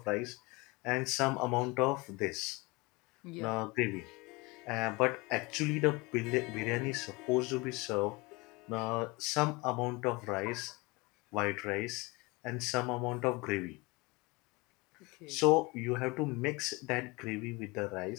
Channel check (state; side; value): quieter; right; 25.3 dB